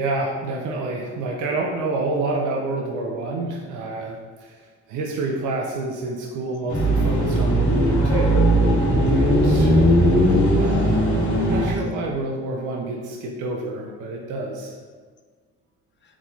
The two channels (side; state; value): both; normal; correlation 0.56